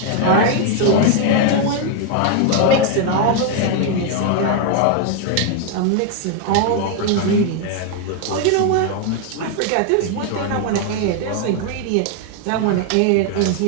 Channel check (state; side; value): different; both; correlation 0.00